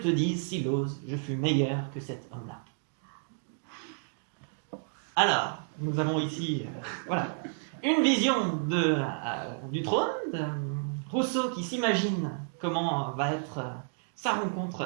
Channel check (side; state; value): left; silent; digital silence